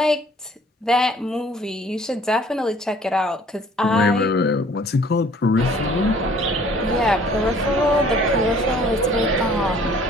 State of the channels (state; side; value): normal; both; correlation 0.55